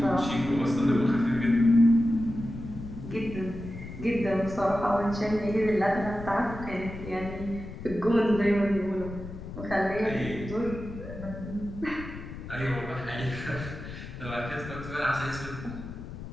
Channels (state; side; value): noise; left; rumble, 11 dB below the sound